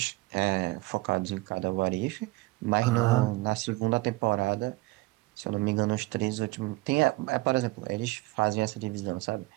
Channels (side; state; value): left; quieter; 20.9 dB